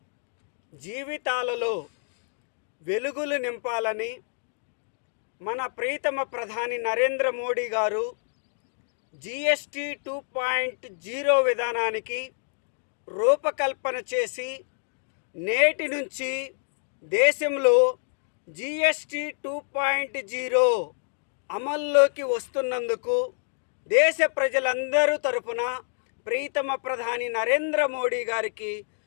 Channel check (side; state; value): right; silent; 60 dB below the other